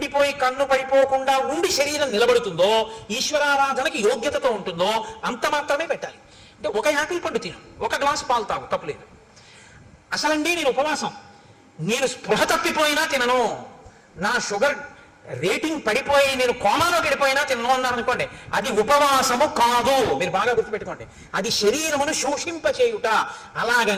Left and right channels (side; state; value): both; identical; correlation 1.00